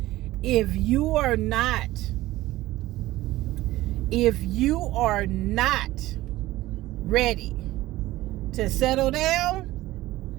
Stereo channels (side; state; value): left; quieter; 16.8 dB